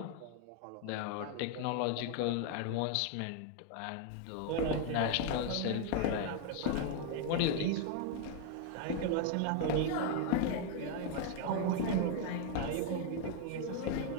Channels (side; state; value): both; different; correlation 0.01